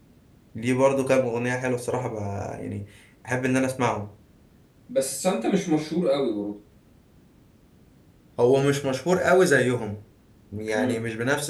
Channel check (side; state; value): both; identical; correlation 1.00